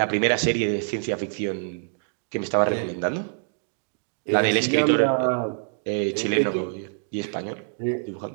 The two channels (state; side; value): silent; left; 61 dB below the other